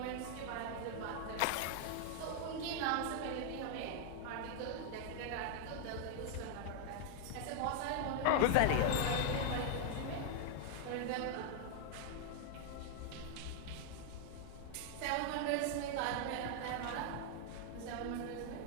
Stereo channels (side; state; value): both; different; correlation 0.00